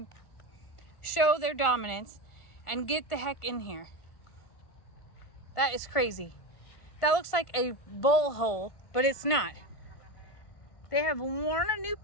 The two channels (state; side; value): late; right; 1.5 ms